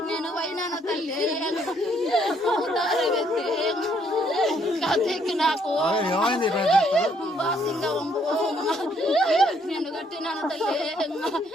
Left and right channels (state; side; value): normal; both; correlation 0.69